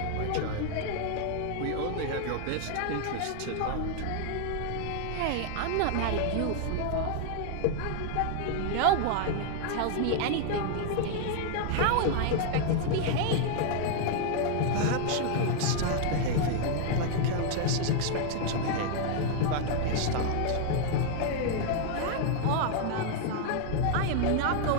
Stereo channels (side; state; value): both; different; correlation 0.00